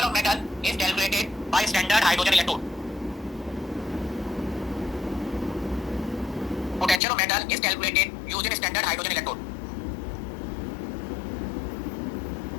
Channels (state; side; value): drops out; right; at 7.0 s